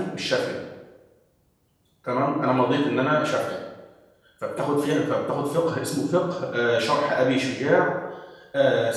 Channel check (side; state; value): both; identical; correlation 1.00